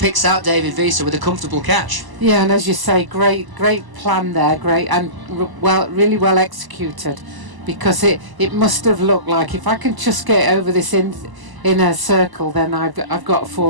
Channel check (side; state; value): left; late; 1.0 ms